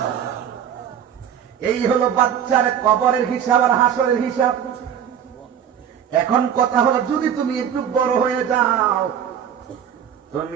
এই হলো বাচ্চার কবরের হিসাব আর হাসরের হিসাব। এখন কথা হলো, যদি তুমি একটু বড় হয়ে যাও,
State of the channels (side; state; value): left; quieter; 8.9 dB